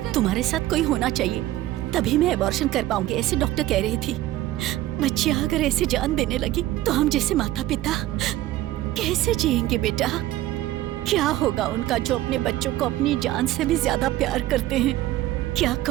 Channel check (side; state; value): left; quieter; 15.3 dB